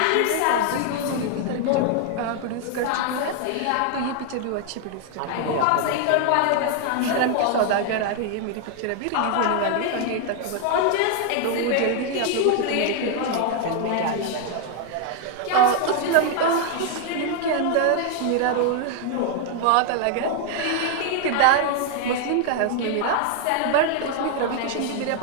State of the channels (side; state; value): both; different; correlation 0.00